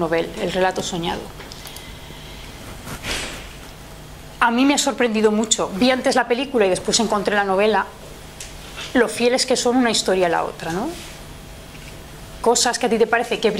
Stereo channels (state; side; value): identical; both; correlation 1.00